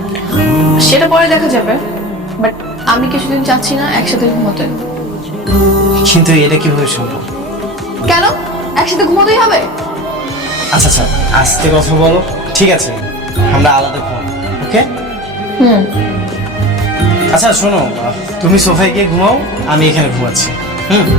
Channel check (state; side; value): normal; both; correlation 0.32